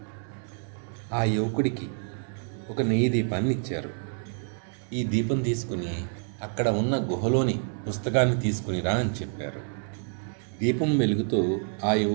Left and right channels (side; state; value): left; silent; 57 dB below the other